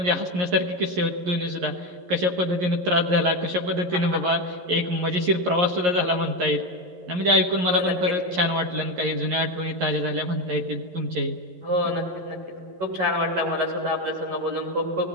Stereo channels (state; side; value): late; left; 11 ms